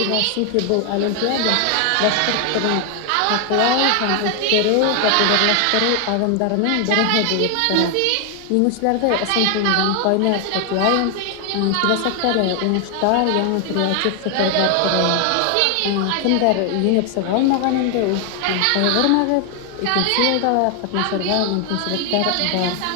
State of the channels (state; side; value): different; both; correlation 0.00